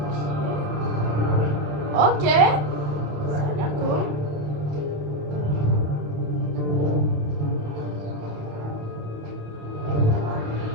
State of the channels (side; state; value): left; late; 27 ms